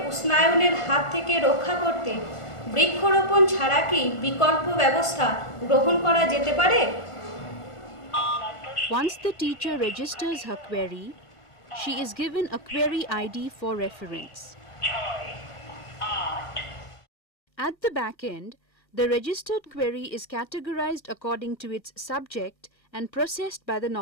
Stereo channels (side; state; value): right; late; 1.5 ms